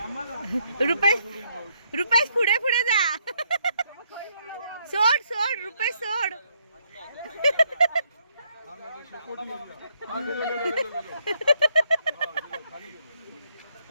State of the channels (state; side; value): inverted; both; correlation -0.74